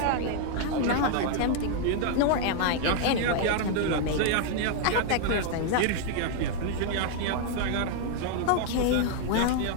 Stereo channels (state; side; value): different; both; correlation 0.00